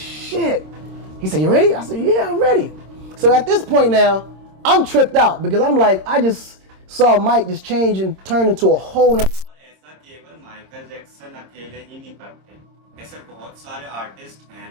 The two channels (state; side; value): late; left; 26 ms